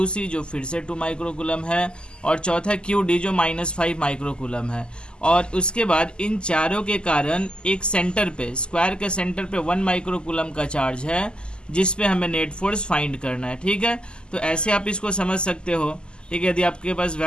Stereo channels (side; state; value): right; late; 0.048 ms